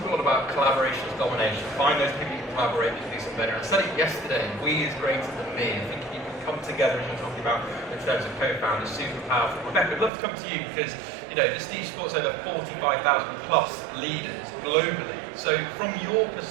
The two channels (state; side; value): drops out; left; at 10.1 s